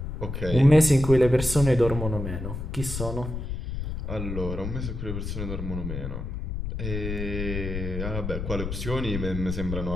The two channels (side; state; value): left; noise; rumble, 5 dB below the sound